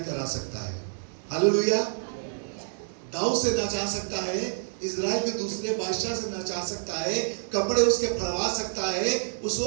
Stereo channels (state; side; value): silent; left; 59 dB below the other